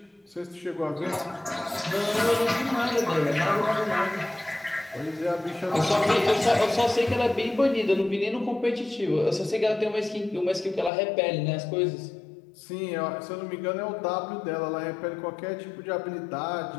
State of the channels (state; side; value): drops out; right; at 10.9 s